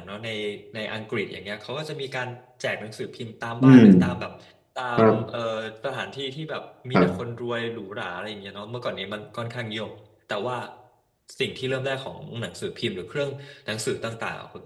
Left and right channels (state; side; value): identical; both; correlation 1.00